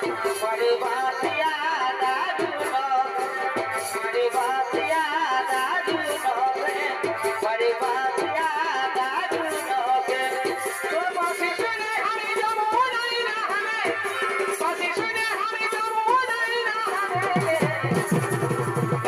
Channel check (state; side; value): identical; both; correlation 1.00